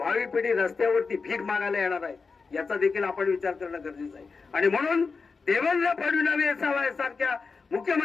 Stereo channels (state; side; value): quieter; right; 4.7 dB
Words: पिढी रस्त्यावरती भीक मागायला येणार आहे. याचा देखील आपण विचार करणं गरजेचं आहे. आणि म्हणून देवेंद्र फडणवीस सारख्या